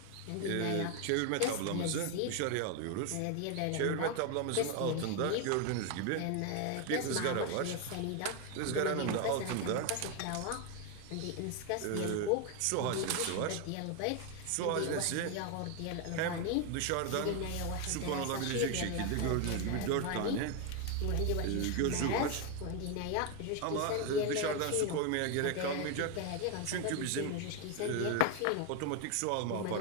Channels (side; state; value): both; different; correlation 0.01